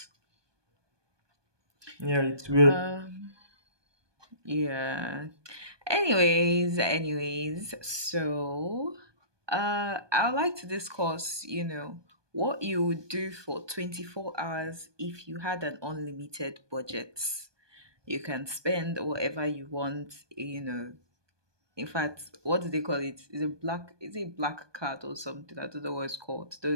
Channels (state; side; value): late; left; 1.2 ms